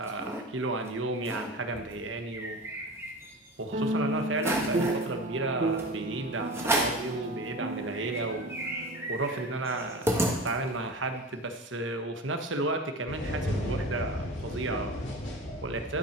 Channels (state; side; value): normal; both; correlation 0.32